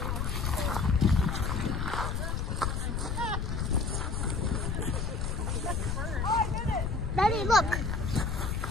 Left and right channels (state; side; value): noise; left; rumble, 1 dB below the sound